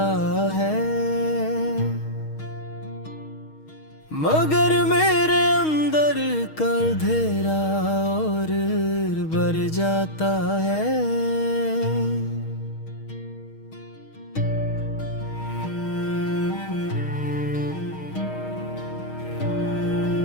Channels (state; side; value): late; right; 6.4 ms